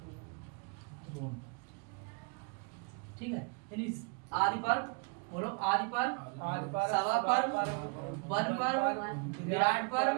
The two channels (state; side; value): quieter; left; 34.4 dB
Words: द्रोण। ठीक है, यानी आदि पर्व, बोलो आदि पर्व, आदि पर्व, सभा पर्व, वन पर्व, विराट पर्व,